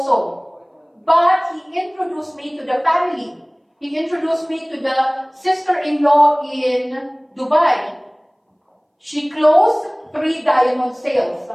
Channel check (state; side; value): identical; both; correlation 1.00